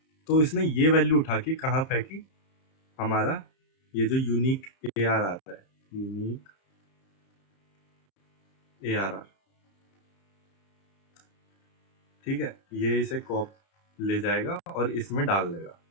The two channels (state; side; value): late; right; 31 ms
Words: तो इसने ये वैल्यू उठा के कहाँ फेंकी, हमारा ये जो यूनिक ARR आता है, यूनिक ARR, ठीक है, ये इसे कॉप ले जाएगा और इसमें डाल देगा।